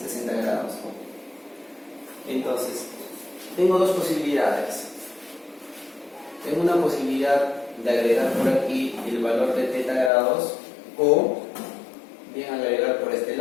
60 grados. Entonces, tengo dos posibilidades. Tengo una posibilidad de agregar por aquí el valor de θ grados o bien agregar por este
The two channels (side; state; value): right; drops out; at 10.1 s